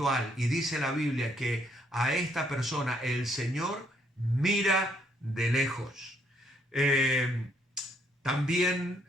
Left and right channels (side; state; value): both; normal; correlation 0.69